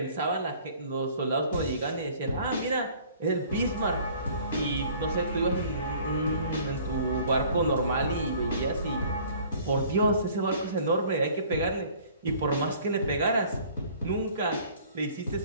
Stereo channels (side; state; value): both; inverted; correlation -0.52